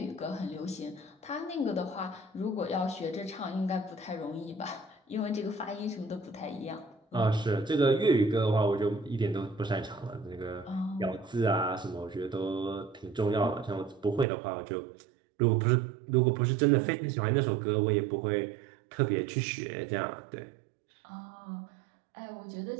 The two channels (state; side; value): drops out; left; at 14.2 s